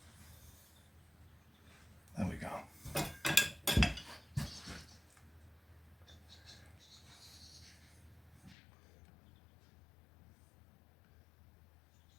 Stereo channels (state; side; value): drops out; right; at 8.6 s